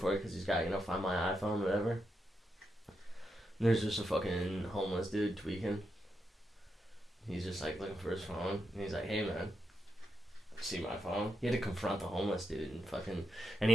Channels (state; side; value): normal; both; correlation 0.84